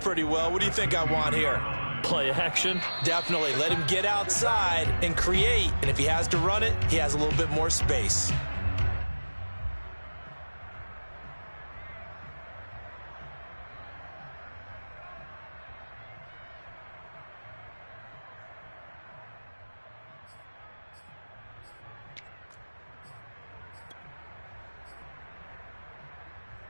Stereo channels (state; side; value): inverted; both; correlation -1.00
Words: well. What do you think I want here? Play action? Definitely. Let him get outside and create. And if he has to run it, he has a little bit more space.